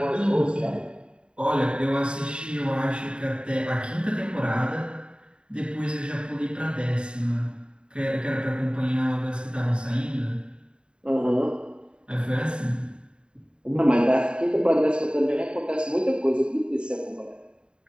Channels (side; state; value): left; late; 0.052 ms